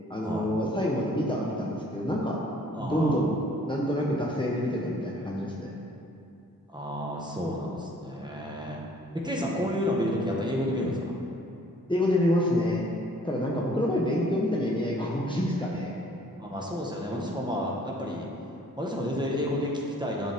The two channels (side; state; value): both; normal; correlation 0.57